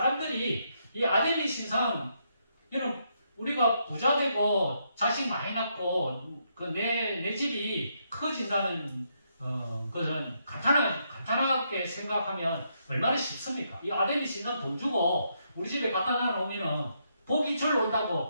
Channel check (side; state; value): both; inverted; correlation -0.77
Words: 이 아데미 신상, 여러분, 우리가 부자 되고 자식 많이 낳고 내 집이 커진다는 것은 간단하게 생각하면 얼마나 쉽습니까? 이 아데미 신상 돈 주고 우리 집에 갖다 놔놓으면 복이 절로